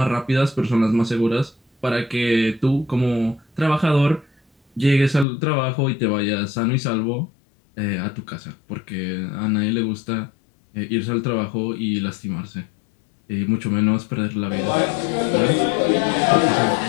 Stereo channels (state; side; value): drops out; right; at 5.2 s